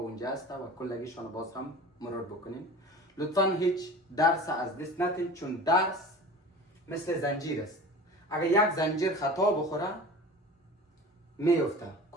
هست و کلگیشان باز هم مرور بکنین. لطفا هیچ درس از دست ندین، چون درس مثل زنجیر است. اگر یک زنجیر خطا بخوره میفته،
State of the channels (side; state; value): both; normal; correlation 0.38